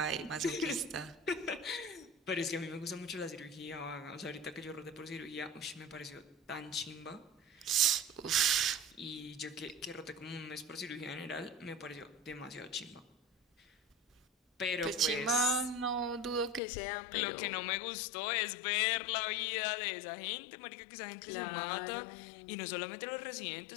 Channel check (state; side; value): drops out; right; at 16.6 s